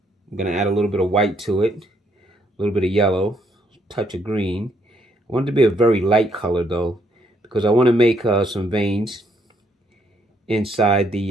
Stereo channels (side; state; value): both; normal; correlation 0.71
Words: I'm going to add a little bit of white to it, a little bit of yellow, touch of green. I want it to be a very light color though, because I want to make some veins inside